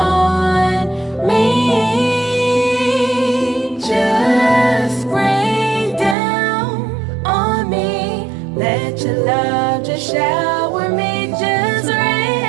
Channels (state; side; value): drops out; left; at 6.2 s